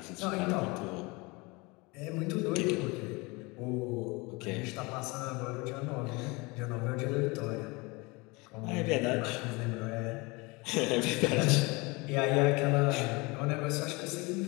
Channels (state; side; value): quieter; right; 25.8 dB